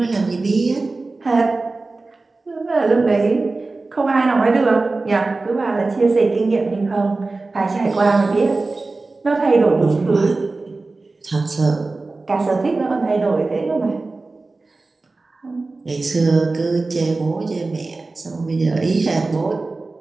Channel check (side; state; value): left; quieter; 3.5 dB